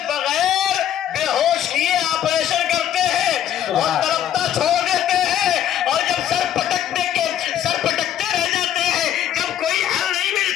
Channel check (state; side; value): quieter; right; 10.7 dB